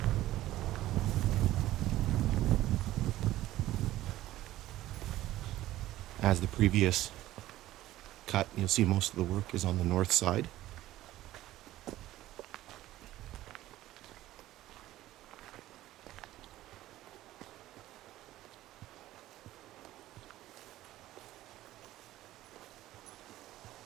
As the previous cut, you'll see most of the work is on the north side.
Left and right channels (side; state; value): left; quieter; 15.1 dB